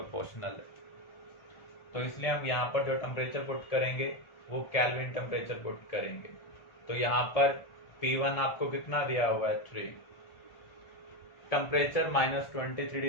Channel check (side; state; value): right; late; 1.4 ms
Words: है। तो इसलिए हम यहाँ पर जो टेम्परेचर पुट करेंगे वो केल्विन टेम्परेचर पुट करेंगे। तो यहाँ पर P1 आपको कितना दिया हुआ है, 3। टेम्परेचर -23